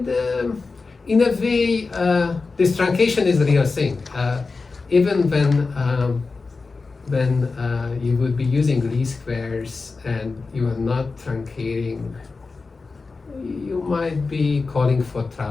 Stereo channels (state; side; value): quieter; right; 4.1 dB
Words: in a way, this truncation is a real thing. Even when you would be using least squares and you are not truncating, you might be calling for